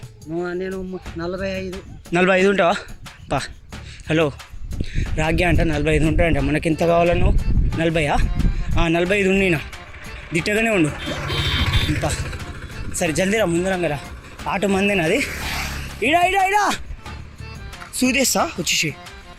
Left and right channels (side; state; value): both; identical; correlation 1.00